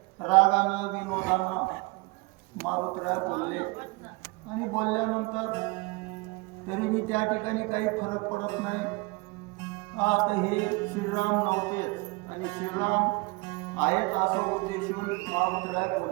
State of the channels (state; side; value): quieter; left; 26.3 dB